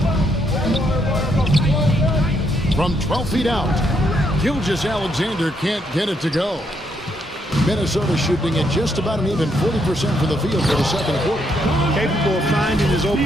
From 12 feet out, Gilgeous-Alexander can't get it to go. Minnesota shooting at just about an even 40% for the field for the second quarter. Capable of finding his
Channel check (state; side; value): normal; both; correlation 0.75